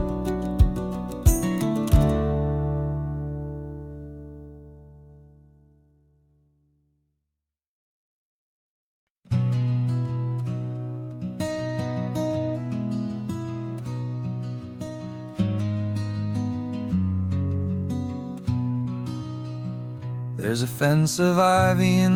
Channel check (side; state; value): both; identical; correlation 1.00